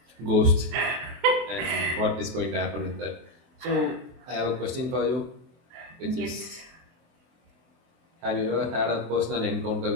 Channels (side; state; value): left; late; 23 ms